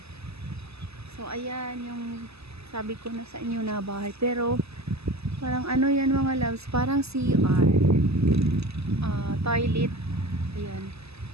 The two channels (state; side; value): late; left; 0.79 ms